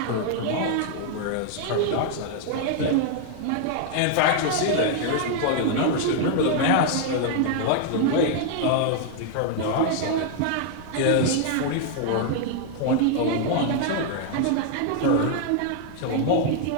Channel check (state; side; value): different; both; correlation 0.00